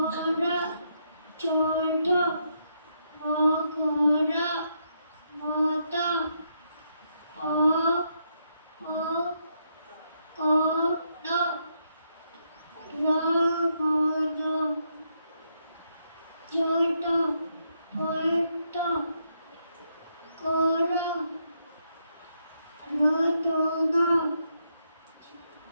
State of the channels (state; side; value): inverted; both; correlation -0.78